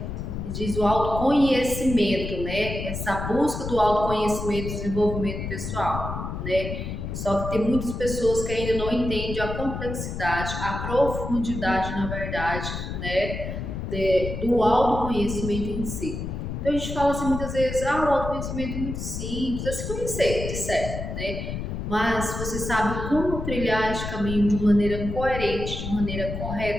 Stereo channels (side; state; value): left; noise; rumble, 5 dB below the sound